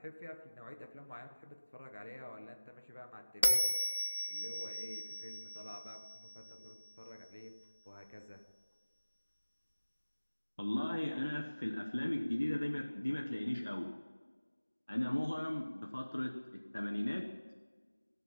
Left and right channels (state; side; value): inverted; both; correlation -1.00